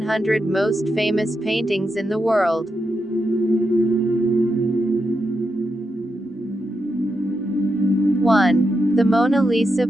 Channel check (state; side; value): normal; both; correlation 0.85